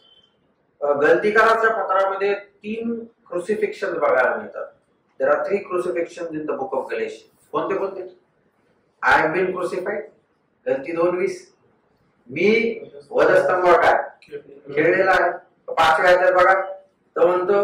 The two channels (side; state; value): both; identical; correlation 1.00